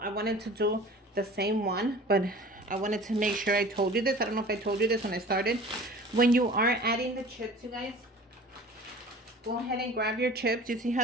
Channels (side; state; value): both; normal; correlation 0.42